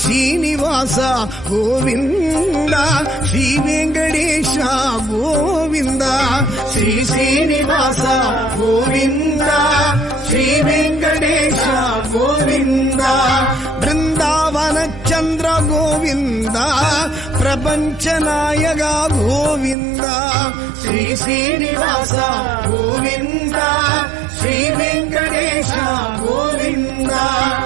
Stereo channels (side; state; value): left; drops out; at 19.8 s